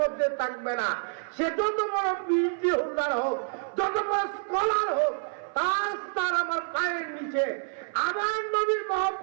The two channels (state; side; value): silent; left; 57 dB below the other